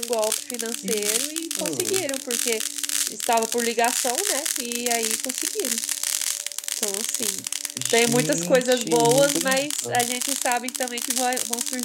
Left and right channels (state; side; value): identical; both; correlation 1.00